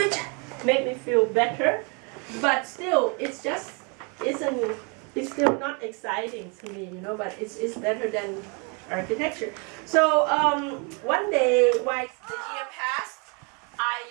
make me feel better. But still, it's still not exciting to me, you know, but it's better than architecture. So one day, while the year passed, I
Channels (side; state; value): left; quieter; 33.8 dB